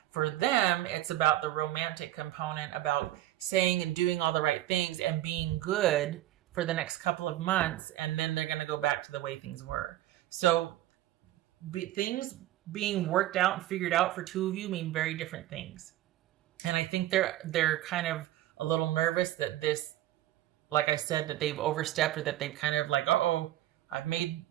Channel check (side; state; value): left; quieter; 14.4 dB